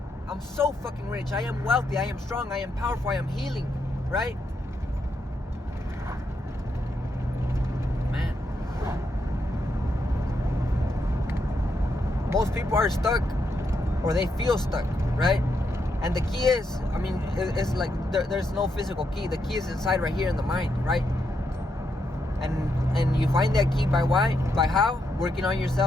I'm so fucking rich. I am wealthy. I am strong. I am powerful. I am healing, right? Man. Most people are stuck or they feel stuck, right? And the key is, I mean, it's like there's no physical key. The key is inside right here in the mind, right? And you find that key by how? Working on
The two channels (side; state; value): both; normal; correlation 0.80